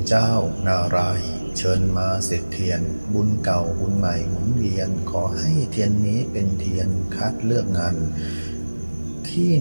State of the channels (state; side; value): inverted; both; correlation -1.00